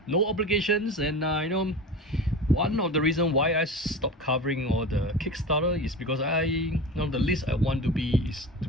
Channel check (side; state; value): both; normal; correlation 0.30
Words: No obligations, and one of the reasons why I stopped covering all the Kickstarter is because the least I want to be is to